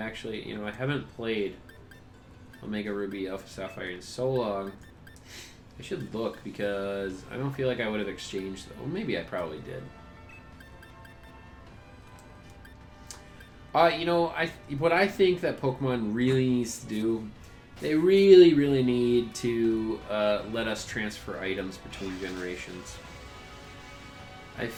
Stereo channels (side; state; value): both; identical; correlation 1.00